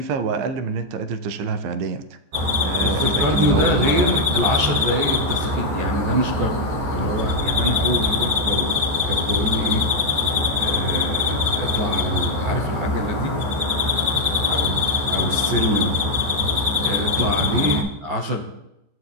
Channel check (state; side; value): late; left; 14 ms